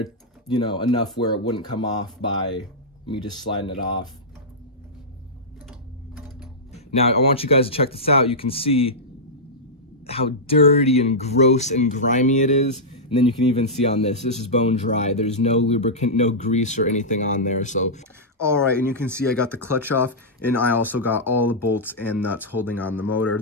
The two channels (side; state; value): both; normal; correlation -0.10